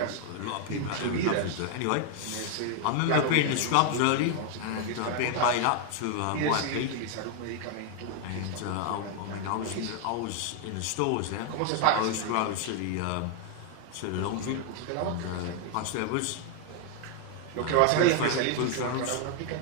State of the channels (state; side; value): different; both; correlation 0.00